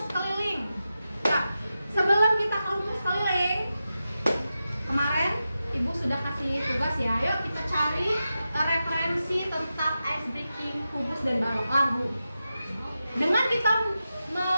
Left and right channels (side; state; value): both; inverted; correlation -0.91